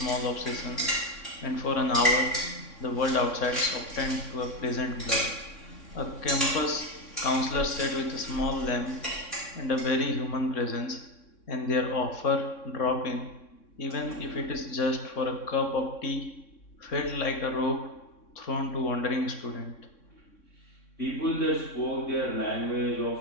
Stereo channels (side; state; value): right; late; 3.6 ms